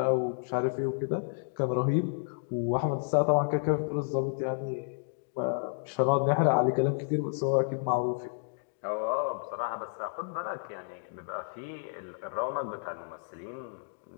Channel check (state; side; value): silent; right; digital silence